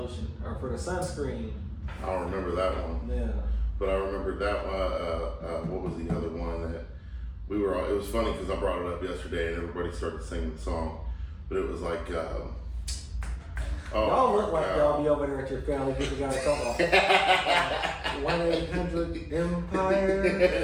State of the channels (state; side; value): identical; both; correlation 1.00